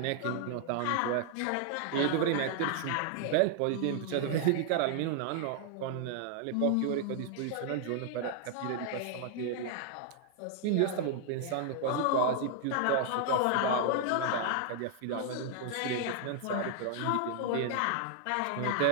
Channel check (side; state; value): both; different; correlation 0.00